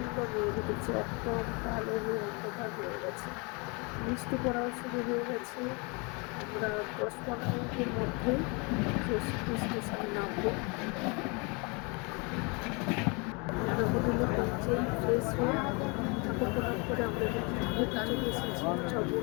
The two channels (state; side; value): quieter; right; 30.8 dB